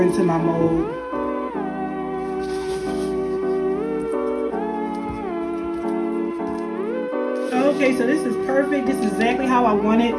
into my mold. Okay, so this is perfect. This is exactly how I want it.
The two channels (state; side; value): identical; both; correlation 1.00